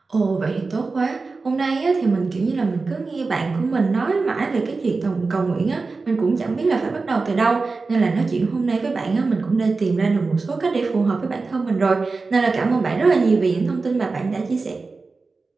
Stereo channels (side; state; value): left; quieter; 4.0 dB